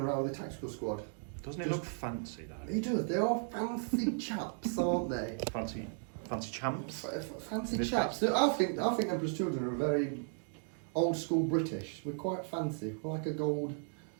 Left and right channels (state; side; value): silent; left; 54 dB below the other